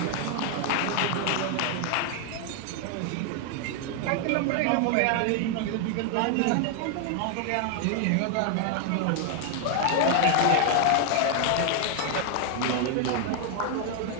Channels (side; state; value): both; different; correlation 0.00